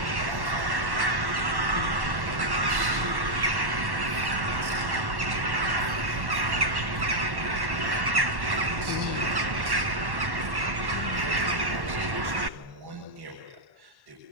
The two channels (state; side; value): late; left; 1.1 ms